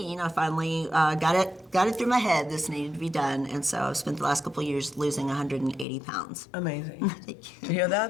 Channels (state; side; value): drops out; right; at 5.9 s